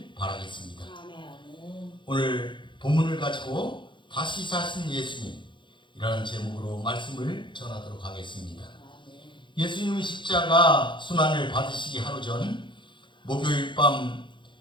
바라겠습니다. 오늘 본문을 가지고 다시 사신 예수님이라는 제목으로 말씀을 전하도록 하겠습니다. 예수님의 십자가 순환을 받으시기 하루 전 목요일 밤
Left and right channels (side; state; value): right; late; 0.23 ms